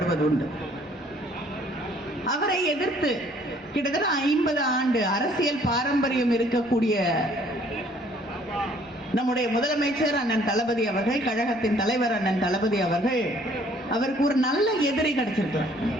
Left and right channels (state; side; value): normal; both; correlation 0.60